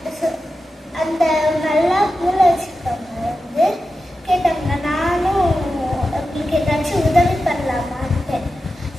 அந்த நல்லா மூளை வச்சிருக்கவங்க வந்து கேட்டாங்க, நானும் உங்களுக்கு ஏதாச்சும் உதவி பண்ணலாமான்ட்டு.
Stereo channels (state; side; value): normal; both; correlation 0.91